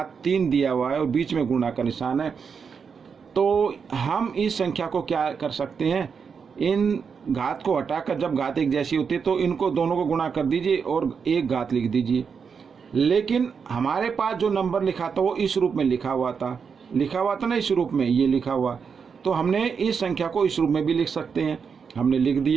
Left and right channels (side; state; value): left; quieter; 6.1 dB